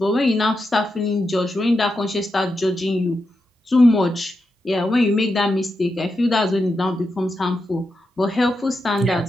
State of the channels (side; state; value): both; normal; correlation 0.87